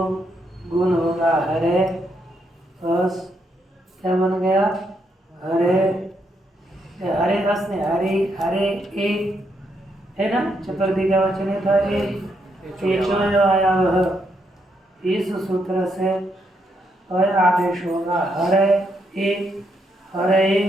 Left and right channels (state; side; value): normal; both; correlation 0.77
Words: गुण होगा हरे, अस क्या बन गया हरे, हरे अस ने हरे हरे ए है ना, चतुर्थी का वचन है था ए आया वह। इस सूत्र से अय आदेश होगा हरे ए हरे